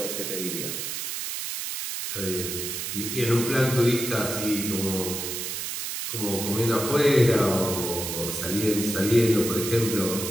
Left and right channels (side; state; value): right; noise; hiss, 4 dB below the sound